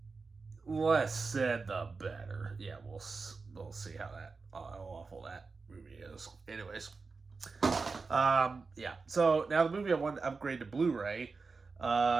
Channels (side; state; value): left; quieter; 4.4 dB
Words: less said the better. Yeah, we'll see how awful that movie is. Anyways, yeah. So now the movie I want to upgrade to Blu-ray.